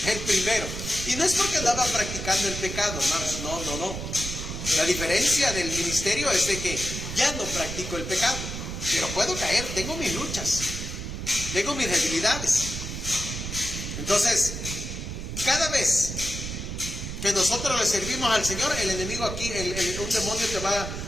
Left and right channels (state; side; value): noise; right; rumble, 6 dB below the sound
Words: El primero. Y no es porque andaba practicando el pecado, hermanos, no. La diferencia del ministerio es de que ya no practico el pecado, pero puedo caer, tengo mis luchas, tengo mis debilidades. Entonces, cada vez que nosotros le servimos al Señor, el enemigo aquí, un demonio te va